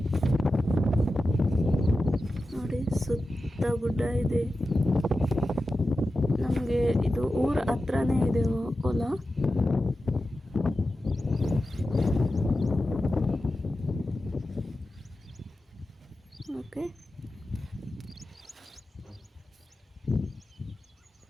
ನೋಡಿ, ಸುತ್ತ ಗುಡ್ಡ ಇದೆ. ನಮಗೆ ಇದು ಊರ ಹತ್ರನೇ ಇದೆ ಹೊಲ. ಓಕೆ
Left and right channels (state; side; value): normal; both; correlation 0.92